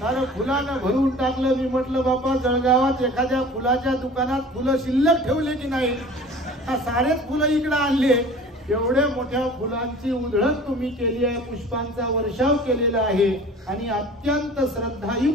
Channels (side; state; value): both; normal; correlation 0.43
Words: कारण फुलानं भरून टाकलं। मी म्हटलं बापा जळगावात एखाद्या फुलाच्या दुकानात फुलं शिल्लक ठेवले की नाही, सारेच फुलं इकडे आणले, एवढ्या मोठ्या फुलांची उधळण तुम्ही केली आहे, पुष्पांचा वर्षाव केलेला आहे आणि अत्यंत